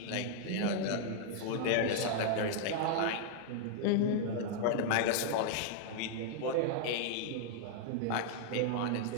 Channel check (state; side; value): different; both; correlation -0.01